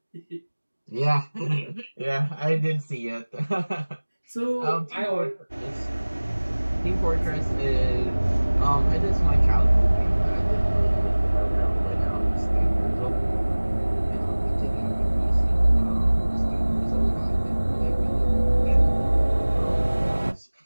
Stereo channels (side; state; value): both; inverted; correlation -1.00